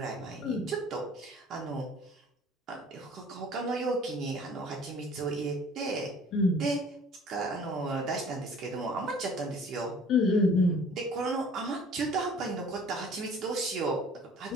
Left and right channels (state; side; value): normal; both; correlation 0.51